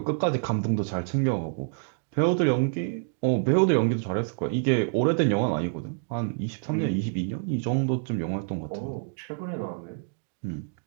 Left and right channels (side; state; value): left; silent; digital silence